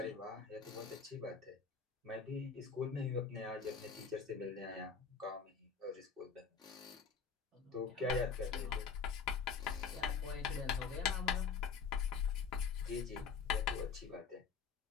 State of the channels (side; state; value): right; quieter; 5.9 dB